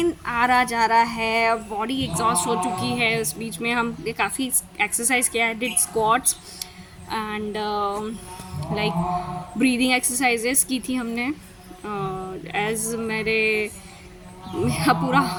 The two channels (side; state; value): both; identical; correlation 1.00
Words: आ रहा जा रहा है, बॉडी एग्जॉस्ट हो चुकी है। उस बीच में हम काफ़ी एक्सरसाइज किया है, did squats and like breathing exercises की थी हमने। एज